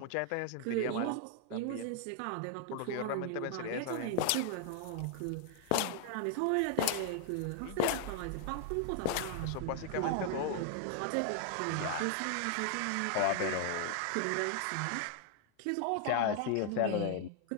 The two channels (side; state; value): both; different; correlation 0.00